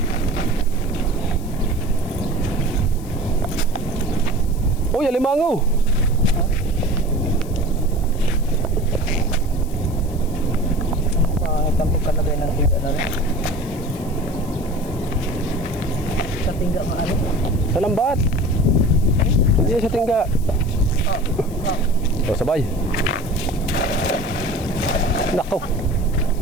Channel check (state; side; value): noise; left; hiss, 21 dB below the sound